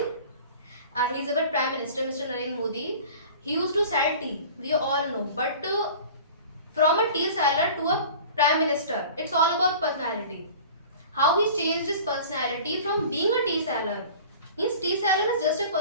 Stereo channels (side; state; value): both; inverted; correlation -0.42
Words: he is our Prime Minister, Mr. Narendra Modi. He used to sell tea, we all know, but from a tea seller to a Prime Minister, it's all about personality. How he changed his personality from being a tea seller. Means tea seller is just a